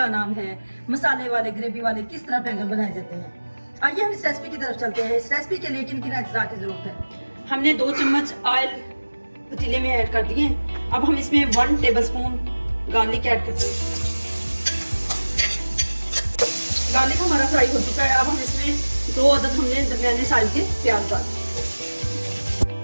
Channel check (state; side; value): inverted; both; correlation -1.00